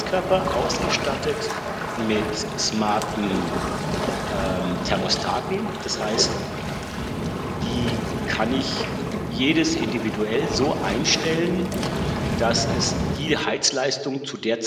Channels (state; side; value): identical; both; correlation 1.00